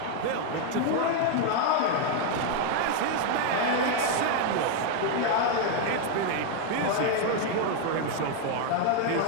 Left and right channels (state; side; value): different; both; correlation 0.01